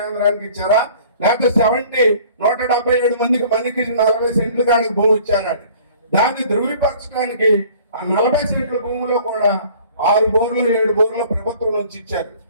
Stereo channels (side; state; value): both; inverted; correlation -0.51